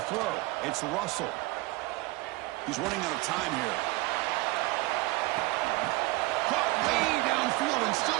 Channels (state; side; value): quieter; left; 21.5 dB